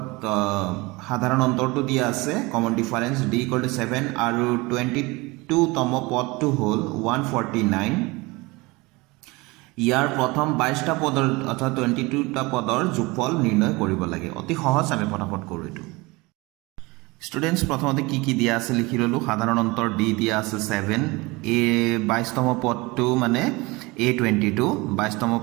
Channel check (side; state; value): left; quieter; 23.8 dB